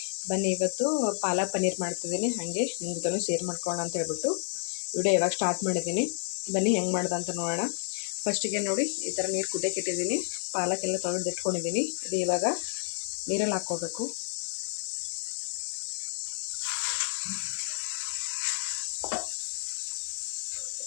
ಬನ್ನಿ, ಇವತ್ತು ಪಾಲಕ್ ಪನ್ನೀರ್ ಮಾಡ್ತಿದ್ದೀನಿ. ಹಾಗೆ ನಿಮ್ಮ ಜೊತೆ ಶೇರ್ ಮಾಡ್ಕೊಳ್ಳೋಣ ಅಂತ ಹೇಳ್ಬಿಟ್ಟು ವಿಡಿಯೋ ಇವಾಗ ಸ್ಟಾರ್ಟ್ ಮಾಡಿದ್ದೀನಿ. ಬನ್ನಿ ಹೆಂಗೆ ಮಾಡ್ದೆ ಅಂತ ನೋಡೋಣ. ಫಸ್ಟಿಗೆ ನೋಡಿ, ಈ ಥರ ನೀರು ಕುದಿಯಕ್ಕೆ ಇಟ್ಟಿದ್ದೀನಿ. ಪಾಲಕ್ಕೆಲ್ಲ ತೊಳೆದು ಇಟ್ಕೊಂಡಿದ್ದೀನಿ. ಇದು ಇವಾಗ ನೀರಲ್ಲಿ ಹಾಕ್ಕೋಬೇಕು.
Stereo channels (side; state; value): right; silent; digital silence